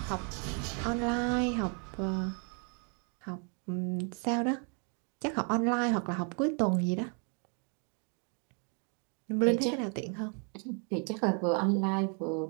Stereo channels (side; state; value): left; quieter; 39.2 dB